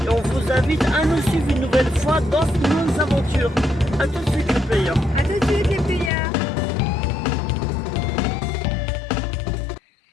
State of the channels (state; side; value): drops out; right; at 6.1 s